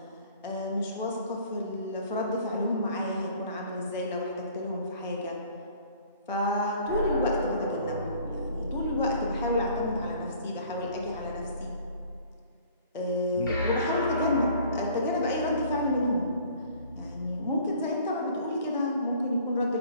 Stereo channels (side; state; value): both; inverted; correlation -0.53